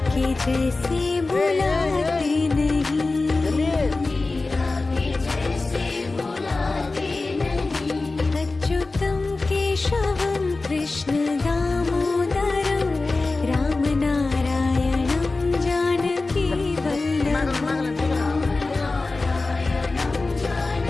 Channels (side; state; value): right; quieter; 3.5 dB